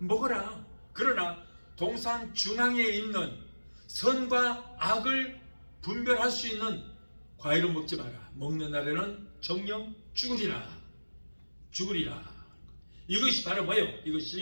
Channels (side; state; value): both; inverted; correlation -1.00